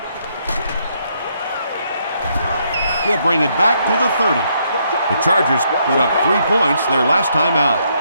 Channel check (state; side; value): inverted; both; correlation -0.73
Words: He'll bring it back to the 30. The Chargers put up 3 points their last time out.